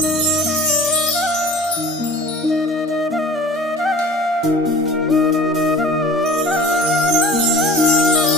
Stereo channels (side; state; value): both; normal; correlation 0.42